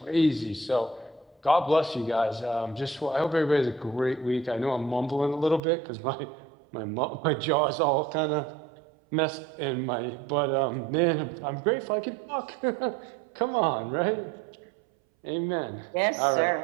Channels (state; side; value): drops out; left; at 5.6 s